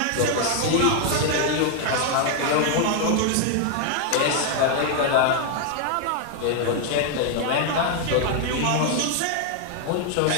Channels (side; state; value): both; different; correlation 0.00